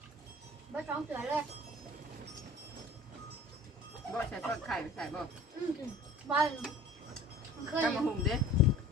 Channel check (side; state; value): both; normal; correlation 0.44